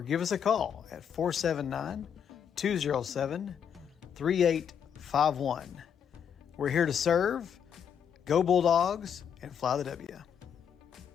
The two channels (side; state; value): right; quieter; 8.0 dB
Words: give us a call at 479-207-3851. We're here to serve. Go Bulldogs and fly the W.